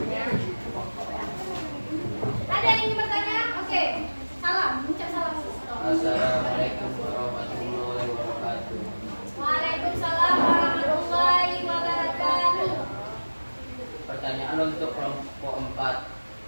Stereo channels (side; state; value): both; inverted; correlation -1.00